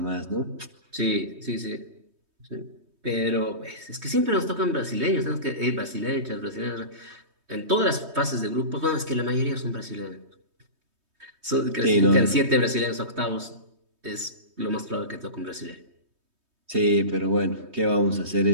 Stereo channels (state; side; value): late; left; 3.2 ms